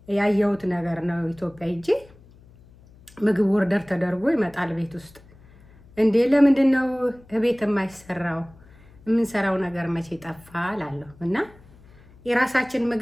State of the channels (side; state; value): left; noise; hum, 25 dB below the sound